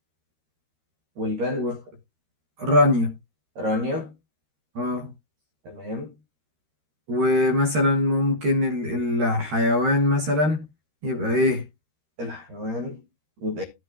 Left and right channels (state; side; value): late; left; 13 ms